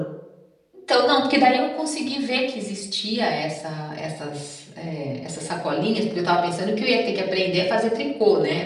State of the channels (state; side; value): identical; both; correlation 1.00